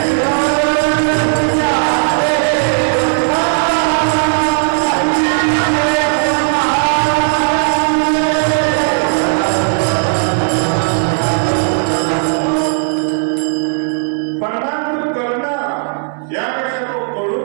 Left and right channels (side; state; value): left; silent; digital silence